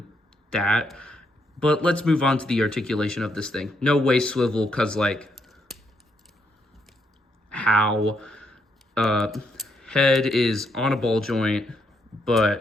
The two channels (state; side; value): normal; both; correlation 0.77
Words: that. But let's move on to the articulation of this thing. No waist swivel, because like how head is on a ball joint,